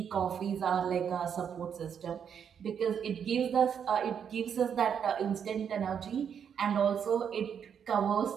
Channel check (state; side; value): quieter; left; 7.8 dB